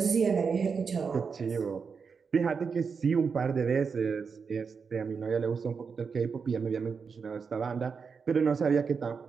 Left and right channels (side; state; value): left; quieter; 5.6 dB